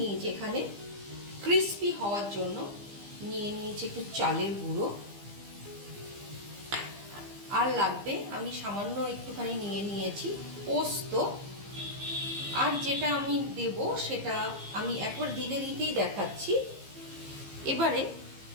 নিয়েছি এখানে ক্রিস্পি হওয়ার জন্য নিয়ে নিয়েছি একটু চালের গুঁড়ো। আর লাগবে আমি সামান্য একটুখানি নিয়ে নিয়েছি পোস্ত। আর যেটা আমি দেব সেটা আমি একবার দিতেই দেখাচ্ছি। এবারে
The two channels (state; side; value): late; left; 15 ms